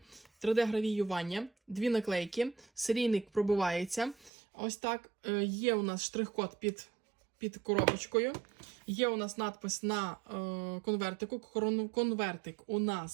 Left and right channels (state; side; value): drops out; left; at 4.3 s